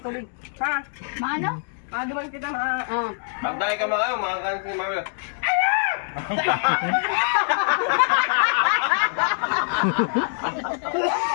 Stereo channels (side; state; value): right; silent; digital silence